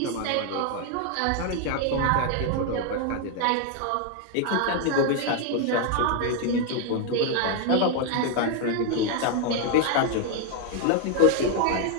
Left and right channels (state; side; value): different; both; correlation 0.00